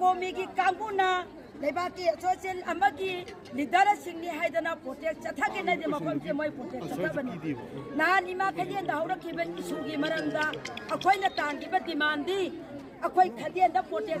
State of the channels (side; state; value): both; identical; correlation 1.00